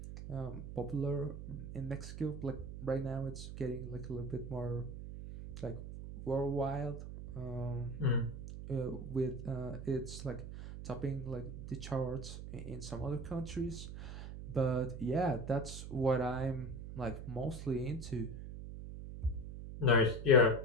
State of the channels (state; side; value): noise; right; hum, 9 dB below the sound